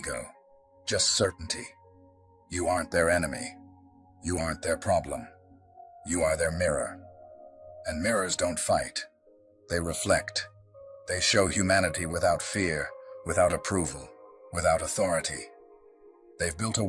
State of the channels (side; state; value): both; identical; correlation 1.00